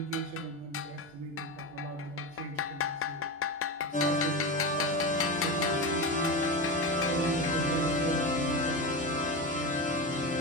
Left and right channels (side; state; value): both; normal; correlation 0.20